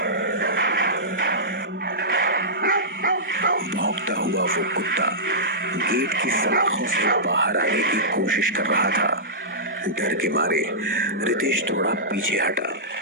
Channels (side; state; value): both; normal; correlation -0.16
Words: भौंकता हुआ वो कुत्ता गेट की सलाखों से बाहर आने की कोशिश कर रहा था। डर के मारे रितेश थोड़ा पीछे हटा,